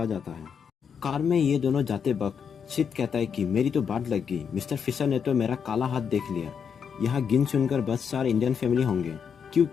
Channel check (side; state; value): right; quieter; 7.0 dB